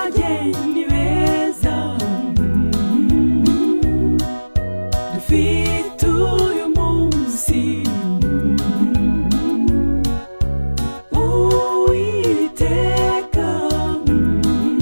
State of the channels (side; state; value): both; inverted; correlation -1.00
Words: beza dufite uyu munsi, Uwiteka